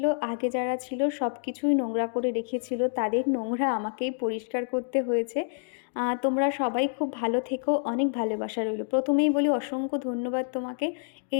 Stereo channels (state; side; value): silent; right; 58 dB below the other